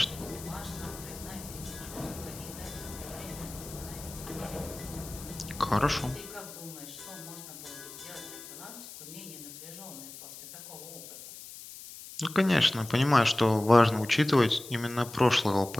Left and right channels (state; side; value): noise; left; hiss, 14 dB below the sound